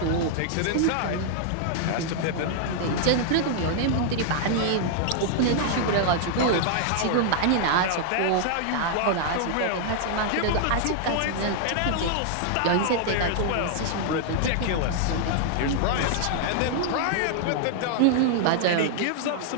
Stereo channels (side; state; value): both; different; correlation -0.01